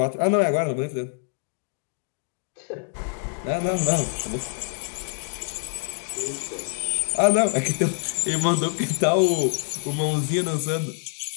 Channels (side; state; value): right; silent; digital silence